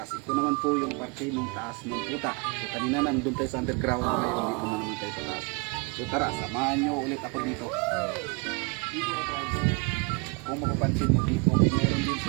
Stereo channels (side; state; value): left; quieter; 31.6 dB